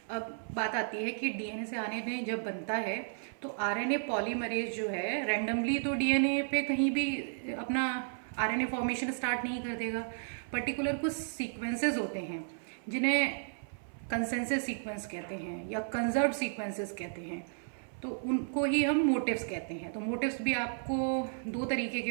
अब बात आती है कि डीएनए से आरएनए जब बनता है तो आरएनए पॉलीमरेज जो है रैंडमली तो डीएनए पे कहीं भी अपना आरएनए फॉर्मेशन स्टार्ट नहीं कर देगा। पर्टिकुलर कुछ सीक्वेंसेस होते हैं जिन्हें कंसेंसस सीक्वेंस कहते हैं या कंजर्व सीक्वेंसेस कहते हैं, तो उनको ही हम मोटिव्स कहते हैं। तो मोटिव्स भी आपको दो तरीके के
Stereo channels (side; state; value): left; silent; 55 dB below the other